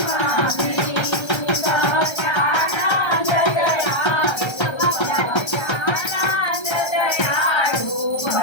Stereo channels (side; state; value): right; late; 1.3 ms